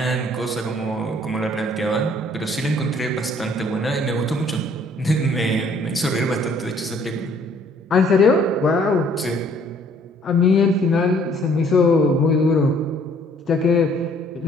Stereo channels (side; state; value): both; normal; correlation 0.60